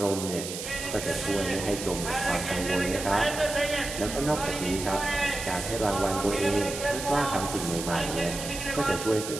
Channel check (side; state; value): right; noise; hiss, 7 dB below the sound